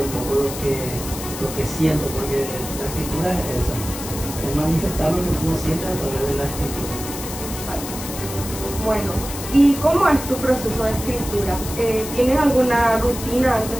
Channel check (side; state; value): left; noise; hiss, 9 dB below the sound